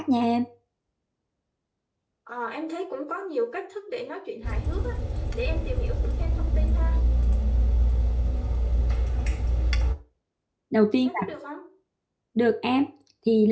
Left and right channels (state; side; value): identical; both; correlation 1.00